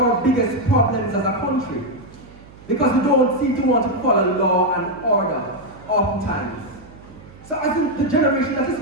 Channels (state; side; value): noise; right; hum, 21 dB below the sound